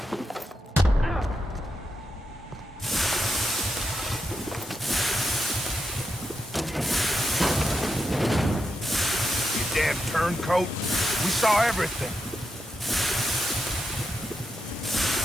Damn turncoat. We saw everything.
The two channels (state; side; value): normal; both; correlation 0.86